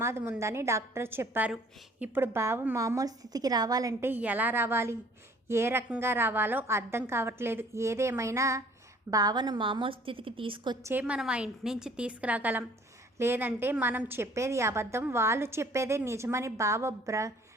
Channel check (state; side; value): normal; both; correlation 0.55